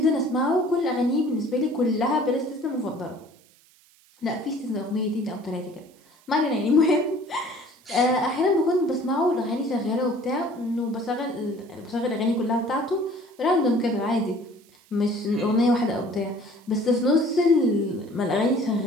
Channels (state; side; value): noise; right; hiss, 30 dB below the sound